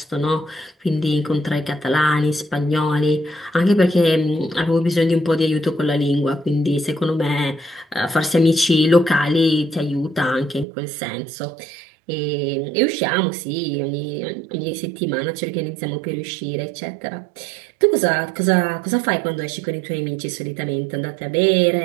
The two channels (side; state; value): left; drops out; at 10.7 s